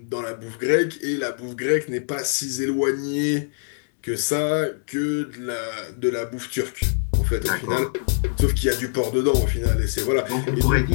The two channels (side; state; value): right; silent; digital silence